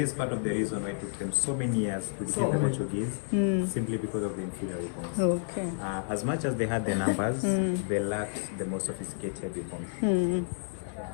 is part of the reason why it took them so many years to defeat the Portuguese, simply because of the inferior weapons. Okay. As much as they had the numbers, they lacked the most sophisticated weapons.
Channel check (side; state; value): right; silent; digital silence